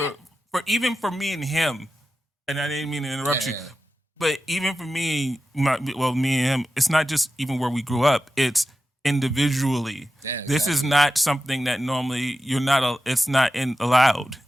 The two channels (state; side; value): normal; both; correlation 0.92